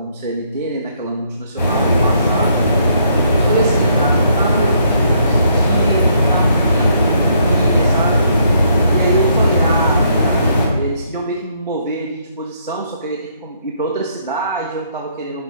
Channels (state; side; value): inverted; both; correlation -0.70